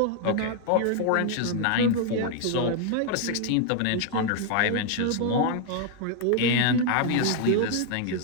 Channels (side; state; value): both; different; correlation 0.00